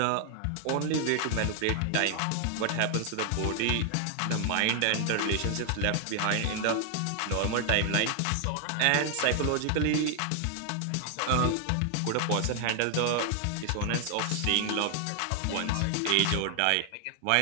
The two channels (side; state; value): both; different; correlation 0.00